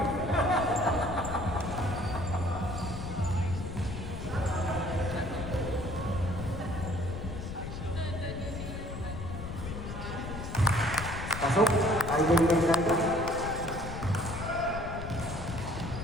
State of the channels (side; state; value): left; noise; rumble, 7 dB below the sound